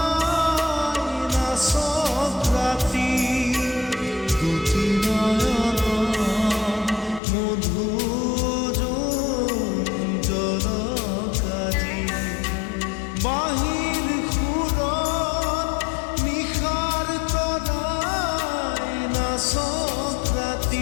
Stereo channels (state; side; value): drops out; right; at 7.2 s